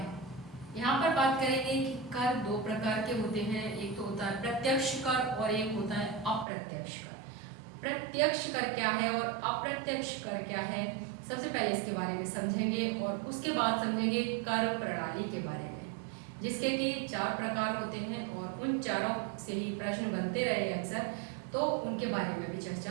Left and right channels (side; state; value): left; drops out; at 6.5 s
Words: यहाँ पर बात करेंगे कि कर 2 प्रकार के होते हैं। एक तो होता है प्रत्यक्ष कर और एक होता है अप्रत्यक्ष कर। प्रत्यक्ष कर क्या है और अप्रत्यक्ष कर क्या है, सबसे पहले इसके बारे में समझेंगे और उसके बाद समझेंगे कर प्रणाली के बारे में, जिसके कि 4 प्रकार होते हैं और उन चारों से ही प्रश्न बनते रहे अक्सर, तो उनके बारे में भी